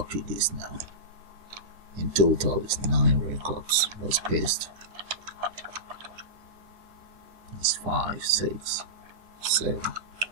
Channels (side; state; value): left; late; 10 ms